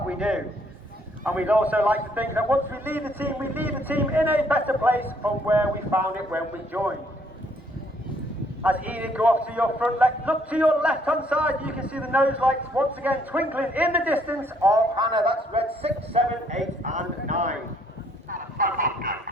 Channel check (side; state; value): both; normal; correlation 0.66